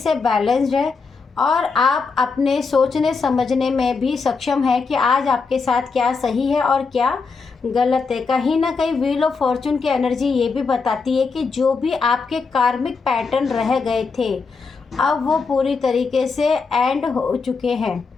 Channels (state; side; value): quieter; right; 4.7 dB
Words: बैलेंस्ड है और आप अपने सोचने समझने में भी सक्षम है कि आज आपके साथ क्या सही है और क्या गलत है। कहीं ना कहीं व्हील ऑफ फॉर्चून की एनर्जी ये भी बताती है कि जो भी आपके कार्मिक पैटर्न रह गए थे अब वो पूरी तरीके से एंड हो चुके हैं।